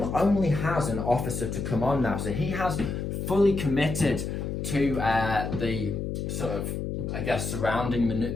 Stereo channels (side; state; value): left; noise; hum, 3 dB below the sound